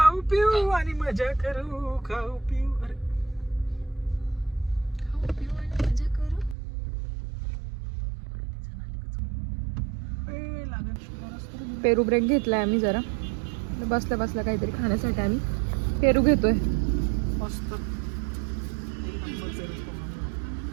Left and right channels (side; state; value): left; drops out; at 6.6 s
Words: पिऊ आणि मजा करू. खाऊ पिऊ आणि मजा करू. पेरू ब्रेक घेतलाय आम्ही जरा. बसल्या बसल्या काहीतरी खाण्यासाठी आम्ही पेरू घेतोय. मस्त.